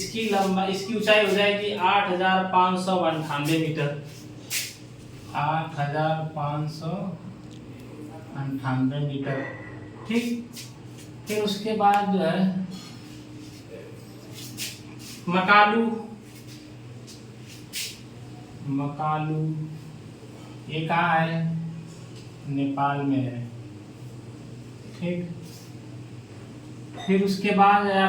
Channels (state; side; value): identical; both; correlation 1.00